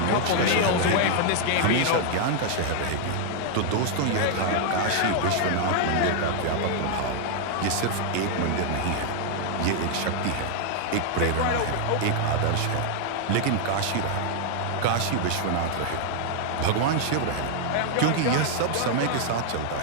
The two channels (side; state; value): both; different; correlation 0.00